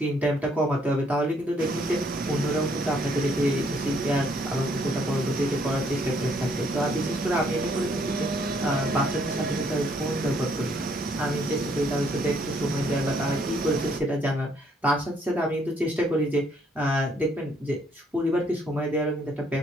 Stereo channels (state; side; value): normal; both; correlation 0.68